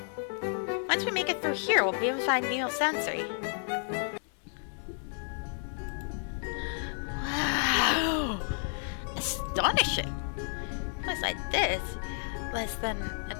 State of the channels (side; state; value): right; silent; 57 dB below the other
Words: Once we make it through here, we'll be able to find Neo Sensory. Wow! Astonishing! A place like this, less than